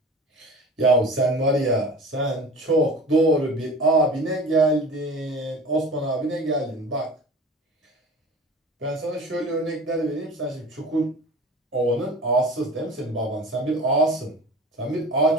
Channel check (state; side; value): normal; both; correlation 0.38